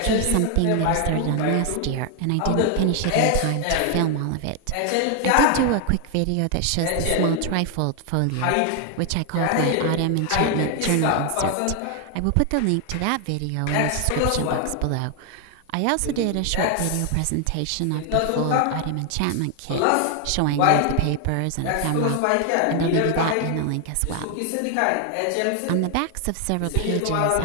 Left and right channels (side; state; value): both; different; correlation 0.00